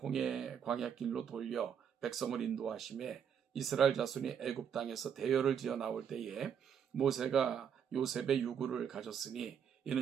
광야길로 돌려 백성을 인도하심에 이스라엘 자손이 애굽 땅에서 대열을 지어 나올 때에 모세가 요셉의 유구를 가졌으니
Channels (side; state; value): left; quieter; 7.9 dB